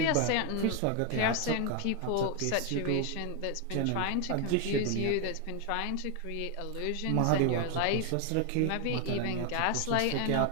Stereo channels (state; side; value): different; both; correlation 0.01